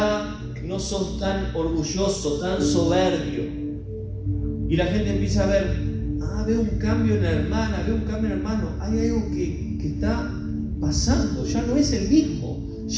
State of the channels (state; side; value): identical; both; correlation 1.00